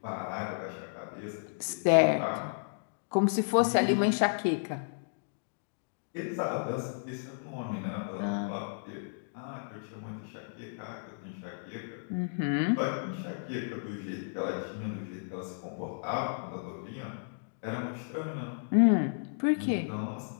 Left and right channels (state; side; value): silent; right; digital silence